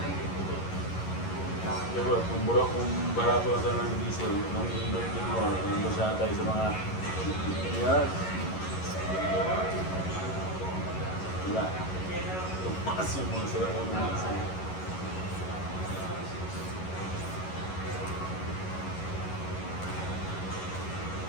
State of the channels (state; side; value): late; right; 11 ms